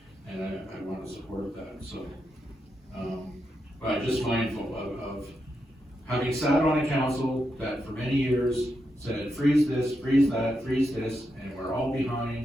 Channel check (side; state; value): both; normal; correlation 0.85